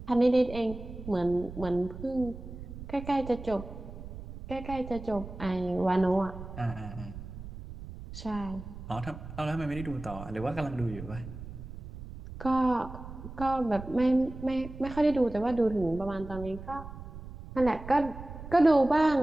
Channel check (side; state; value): right; noise; rumble, 12 dB below the sound